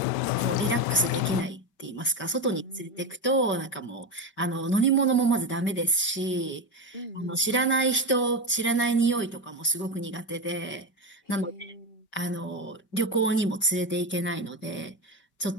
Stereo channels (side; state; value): right; late; 5.2 ms